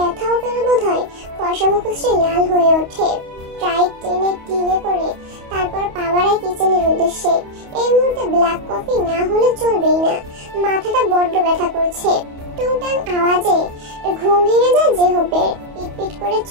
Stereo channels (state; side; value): late; left; 28 ms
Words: পেল বোধহয়। ফর্সা মুখশ্রী লাল হয়ে ওঠে। টাইট টেনে টিনে করে তারপর পা বাড়ায় কিচেনের উদ্দেশ্যে। এই মুহূর্তে ব্ল্যাক কফি না হলে চলবেই না। মাথাটা বড্ড ব্যথা করছে। টুংটাং আওয়াজে ঘুম ভেঙে যায় জেহবের। পিটপিট করে